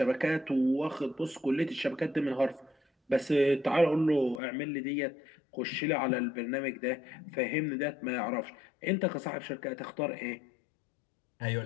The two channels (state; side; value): drops out; right; at 4.4 s